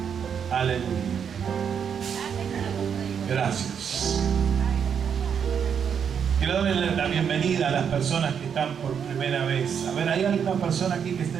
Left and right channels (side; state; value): left; quieter; 7.5 dB